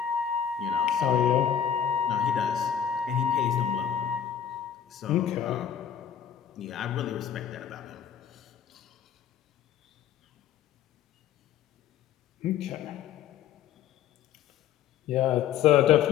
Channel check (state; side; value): quieter; right; 9.0 dB